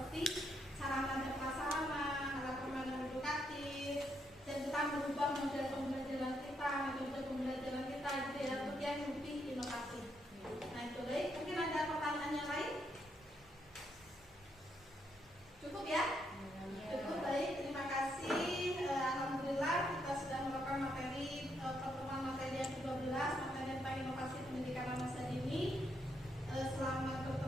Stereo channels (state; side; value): normal; both; correlation 0.77